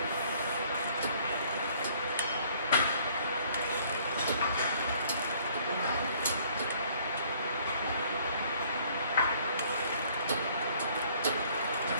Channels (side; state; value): both; inverted; correlation -0.59